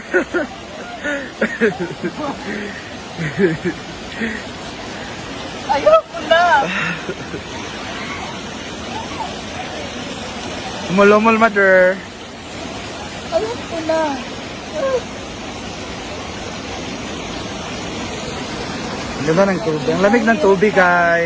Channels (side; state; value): both; identical; correlation 1.00